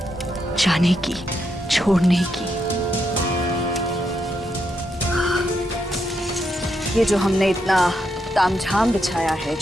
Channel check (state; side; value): normal; both; correlation 0.81